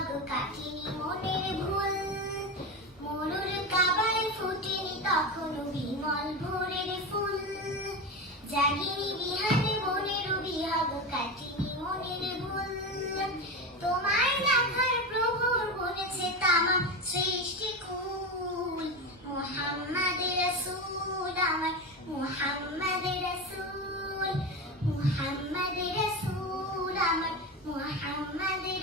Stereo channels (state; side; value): normal; both; correlation 0.20